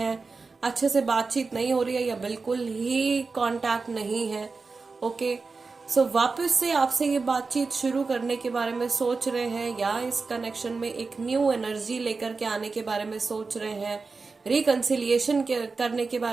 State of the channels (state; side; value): quieter; left; 4.3 dB